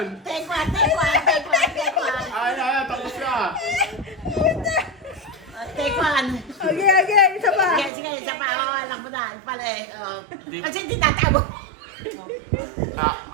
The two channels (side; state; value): left; drops out; at 7.9 s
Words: Take one. Ay, tapos na. Take one. Okay, isa pa. Sige, isa pa. Alam mo na. Pala eh. Kasi hindi tatabo.